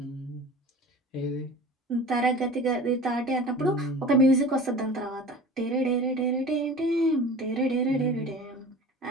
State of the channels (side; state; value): both; normal; correlation 0.39